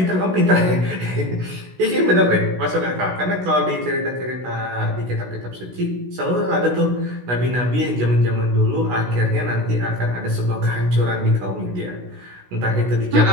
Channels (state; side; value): late; left; 16 ms